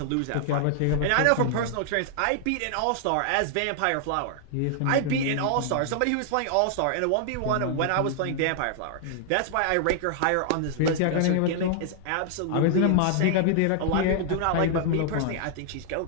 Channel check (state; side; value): different; both; correlation 0.00